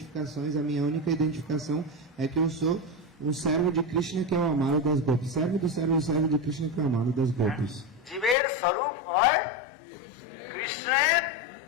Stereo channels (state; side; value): drops out; right; at 8.3 s